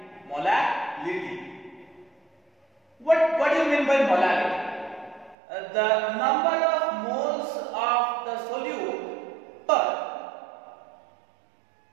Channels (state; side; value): drops out; left; at 5.4 s